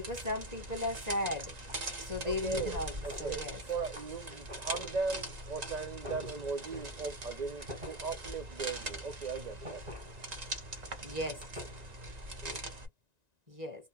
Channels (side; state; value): left; late; 1.9 ms